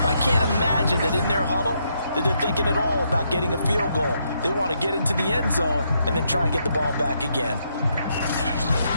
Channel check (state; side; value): inverted; both; correlation -0.77